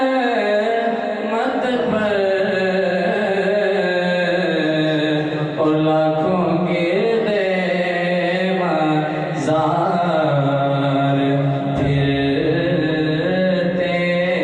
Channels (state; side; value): identical; both; correlation 1.00